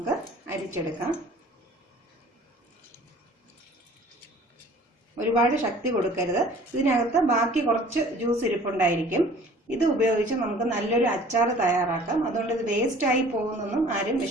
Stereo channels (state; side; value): normal; both; correlation 0.49